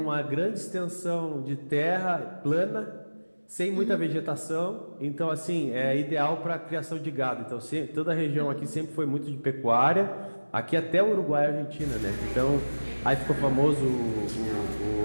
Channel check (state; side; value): inverted; both; correlation -1.00